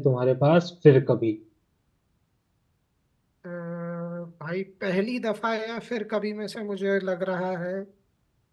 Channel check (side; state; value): both; identical; correlation 1.00